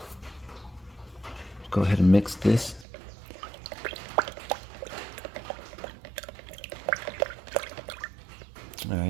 Go ahead and mix this.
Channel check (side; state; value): left; drops out; at 2.9 s